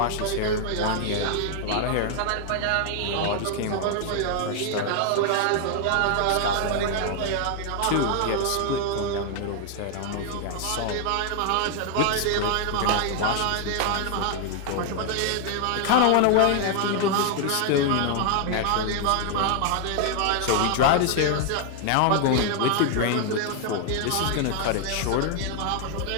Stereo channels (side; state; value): both; different; correlation 0.00